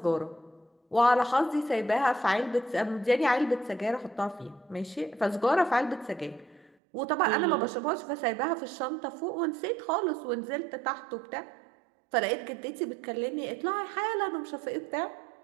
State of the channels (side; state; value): left; drops out; at 6.7 s